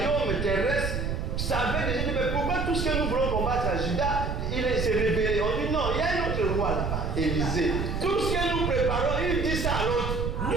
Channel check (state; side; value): noise; right; rumble, 2 dB below the sound